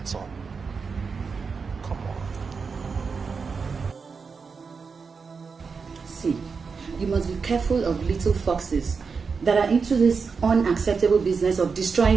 all. Come on. See, you must be careful of little foxes that are into this unacceptable business of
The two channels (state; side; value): quieter; left; 5.2 dB